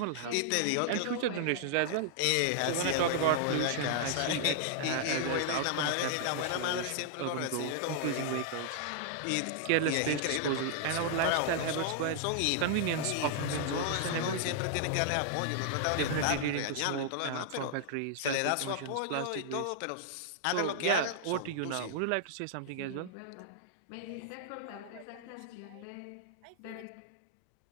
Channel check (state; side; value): different; both; correlation -0.01